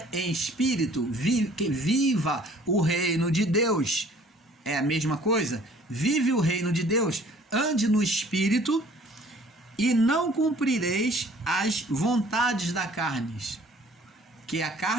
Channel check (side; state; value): both; normal; correlation 0.54